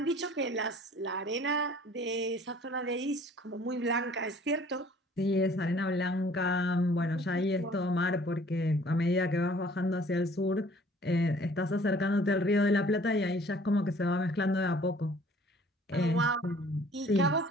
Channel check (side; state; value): both; normal; correlation 0.54